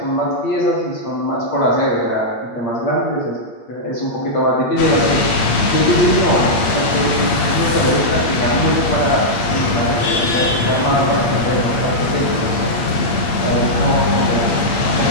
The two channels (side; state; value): right; late; 8.9 ms